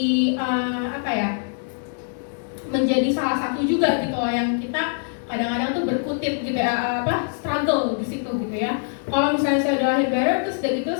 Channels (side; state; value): right; silent; 63 dB below the other